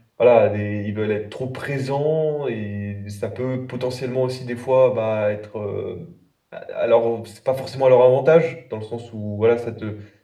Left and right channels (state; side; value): identical; both; correlation 1.00